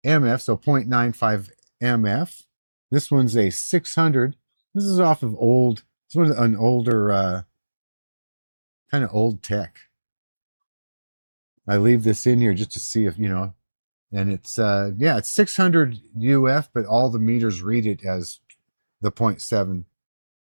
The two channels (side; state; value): both; inverted; correlation -1.00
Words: MF, so 0.95 MF. This one's a 600. This is off of this one's an older, kind of old tech. I leave this in here just to see if, and it's, yeah, it's 600 UF, but all the meters read it as the 0.7